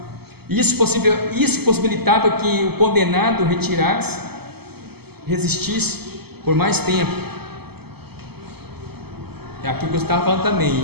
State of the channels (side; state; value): left; late; 0.96 ms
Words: Isso possibilitava que o condenado retirasse, resistisse por mais tempo. É aquilo que eu estava falando também.